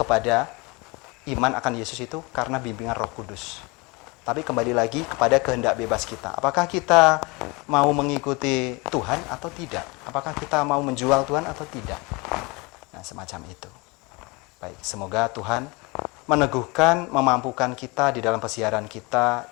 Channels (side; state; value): right; quieter; 26.7 dB